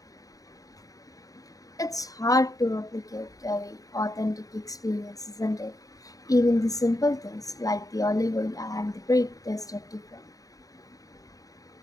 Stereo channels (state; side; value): late; right; 0.17 ms